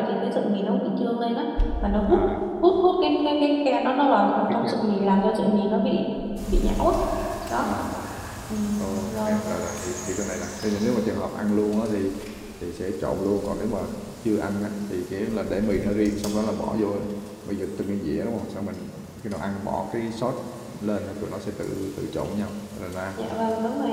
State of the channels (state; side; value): identical; both; correlation 1.00